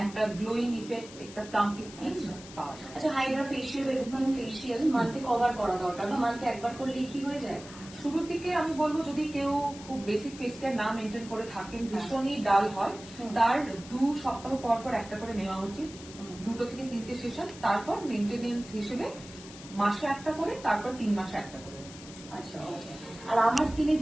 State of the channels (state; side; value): noise; left; hiss, 16 dB below the sound